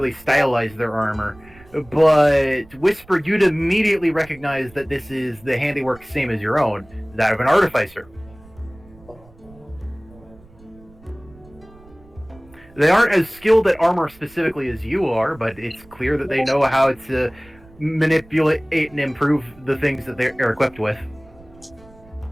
stylize their armor, but Whisper, you'd immediately recognize that this is the handiwork same as your own, that of an artificer. They aren't as skilled at armor specifically as you are, but it's clear that they know how to manipulate and improve the things that they're equipped with.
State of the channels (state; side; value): noise; right; rumble, 25 dB below the sound